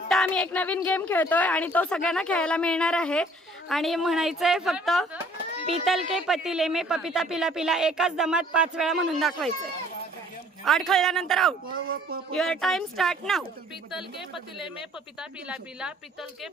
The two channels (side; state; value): both; normal; correlation 0.57